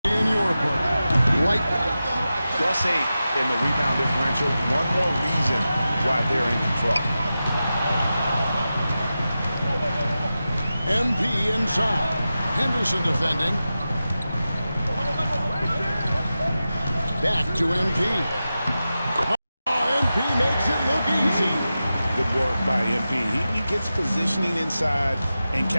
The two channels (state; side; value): inverted; both; correlation -0.93